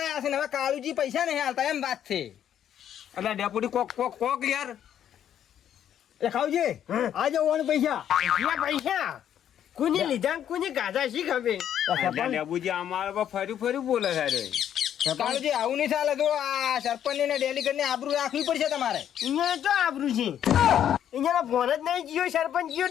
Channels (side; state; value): right; quieter; 10.0 dB